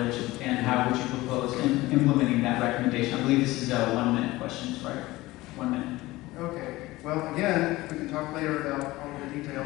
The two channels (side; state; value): right; quieter; 19.0 dB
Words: and how would you propose implementing that recommendation? I believe this is 1 minute questions, right? 1 minute. Okay. Well, again, we can talk later about all the